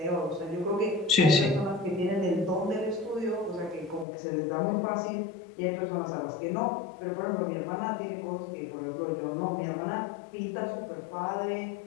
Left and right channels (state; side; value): drops out; right; at 4.0 s